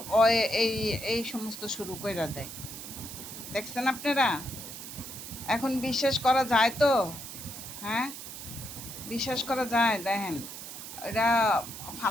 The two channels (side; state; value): right; noise; hiss, 10 dB below the sound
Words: ও এই এই সমস্ত শুরু কইরা দেয়। দেখছেন আপনারা? এখন বিশ্বাস করা যায় তো? হ্যাঁ? বিশ্বাস করা যায়? দেখেন, এটা